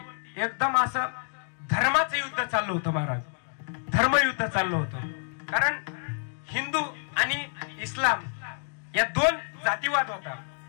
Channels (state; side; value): silent; right; digital silence